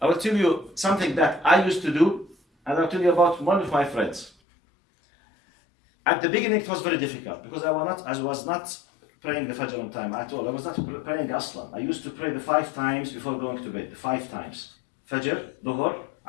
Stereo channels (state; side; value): drops out; right; at 4.3 s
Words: I will tell you something that I used to do, and I'll tell you about one of my friends. At the beginning, it was very difficult because I was not praying the Fajr on time at all. I was not praying Aslan. I used to pray the 5 times before going to bed, 5 times. Fajr, Dhuhr,